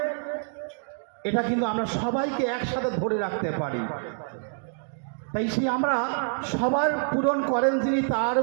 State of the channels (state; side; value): silent; left; digital silence